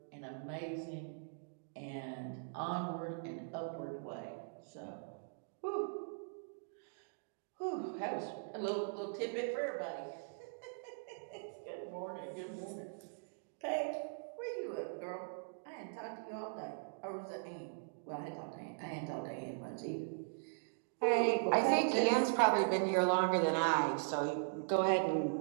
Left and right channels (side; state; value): left; silent; digital silence